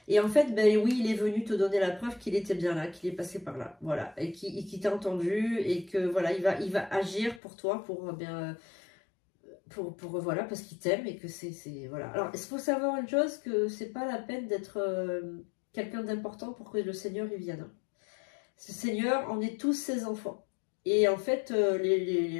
Et en fait, ben oui, il est venu te donner la preuve qu'il était bien là, qu'il est passé par là, voilà, et qu'il t'a entendu, et que voilà, il va agir pour toi, voilà, parce qu'il t'aime et que c'est voilà. Alors, il faut savoir une chose, que c'est pas la peine d'être quelqu'un d'important pour que le Seigneur y vienne. Ce Seigneur, on est tous ses enfants. Et en fait,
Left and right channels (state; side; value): drops out; right; at 7.4 s